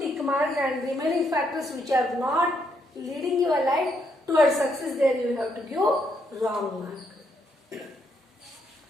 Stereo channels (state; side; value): normal; both; correlation 0.75